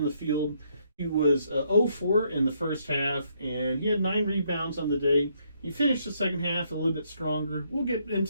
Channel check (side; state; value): both; inverted; correlation -0.72